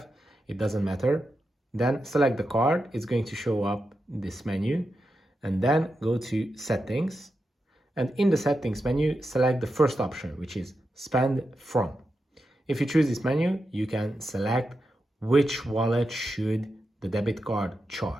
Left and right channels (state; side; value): normal; both; correlation 0.88